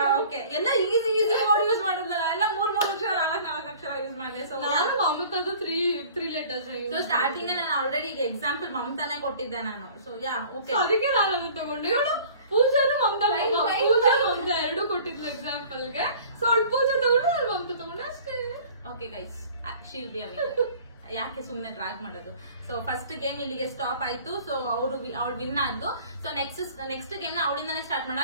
ಓಕೆ, ಎಲ್ಲ ಈಸಿ ವರ್ಡ್ ಯೂಸ್ ಮಾಡಿದ್ರಲ್ಲ, ಎಲ್ಲ 3 ಅಕ್ಷರ 4 ಅಕ್ಷರ ಯೂಸ್ ಮಾಡಿದೆ. ಸೊ ನಾನು ಮಮತಾದು 3 ಲೆಟರ್ಸ್. ಸೊ ಸ್ಟಾರ್ಟಿಂಗ್ ನಾನು ಆಲ್ರೆಡಿ ಈಗ ಎಕ್ಸಾಂಪಲ್ ಮಮತಾನೆ ಕೊಟ್ಟಿದ್ದೆ ನಾನು. ಸೊ ಯಾ ಓಕೆ, ಅದಕ್ಕೆ ನಾನು ಅದನ್ನ ತಗೊಂಡೆ. ಇವಳು ಪೂಜಾನು ಮಮತಾ ಎರಡು ಕೊಟ್ಟಿದ್ಲು ಎಕ್ಸಾಂಪಲ್ ಗೆ. ಸೊ ಅವಳು ಪೂಜಾ ತಗೊಂಡು ನಾನು ಮಮತಾ ತಗೊಂಡೆ ಅಷ್ಟೇ. Okay guys, she'll be a winner. ಯಾಕೆ ಸುಮ್ನೆ ಡ್ರಾಗ್ ಮಾಡೋದು. ಸೊ ಫಸ್ಟ್ ಗೇಮ್ ಇಲ್ಲಿಗೆ ಸ್ಟಾಪ್ ಆಯ್ತು. ಸೊ ಅವಳು ವಿನ್ ಆದ್ಲು. ಸೊ ನೆಕ್ಸ್ಟ್ ಗೇಮ್ ನ ಅವಳಿಂದಾನೆ ಸ್ಟಾರ್ಟ್ ಮಾಡೋಣ.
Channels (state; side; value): inverted; both; correlation -0.48